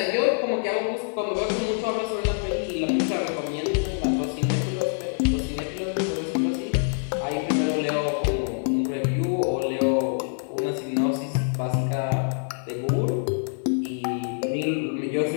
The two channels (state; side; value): silent; right; digital silence